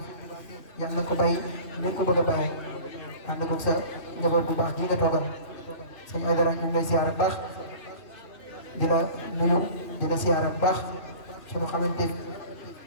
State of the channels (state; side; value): late; right; 3.2 ms